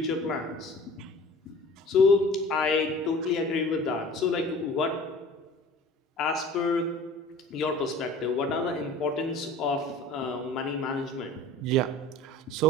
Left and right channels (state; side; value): normal; both; correlation 0.43